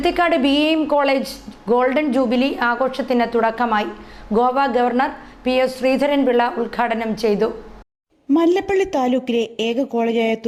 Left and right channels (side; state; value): both; identical; correlation 1.00